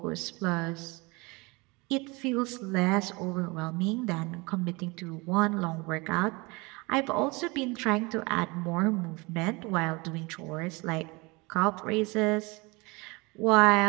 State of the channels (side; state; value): left; quieter; 26.0 dB